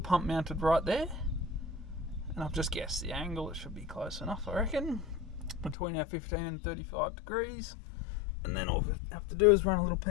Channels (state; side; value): drops out; right; at 5.8 s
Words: mounted right there, and I've just guessed the angle. It should be close enough, I reckon, between our 15 and 35 degrees. And then all I have to do is run a little